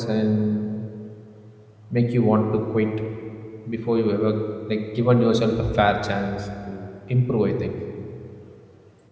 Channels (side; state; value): both; identical; correlation 1.00